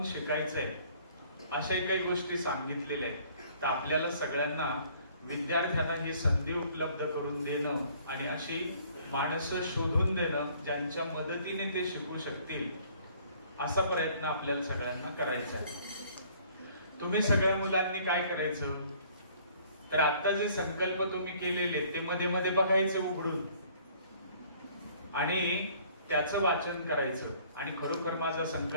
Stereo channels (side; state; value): both; inverted; correlation -0.57